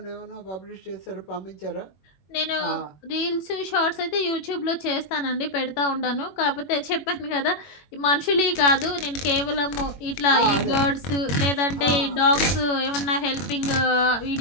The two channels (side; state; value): right; late; 21 ms